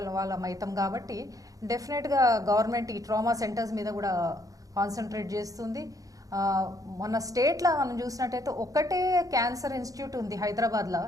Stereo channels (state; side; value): late; left; 0.17 ms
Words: వాళ్ళం అవుతాం కాబట్టి డెఫినెట్గా గవర్నమెంట్ ఈ ట్రామా సెంటర్స్ మీద కూడా కాన్సన్ట్రేట్ చేస్తుంది. మన స్టేట్లో మనం చూసినట్టయితే ఒకటే క్యాన్సర్ ఇన్స్టిట్యూట్ ఉంది హైదరాబాద్లో,